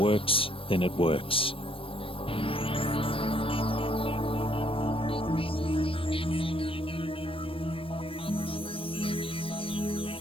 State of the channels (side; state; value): right; late; 0.26 ms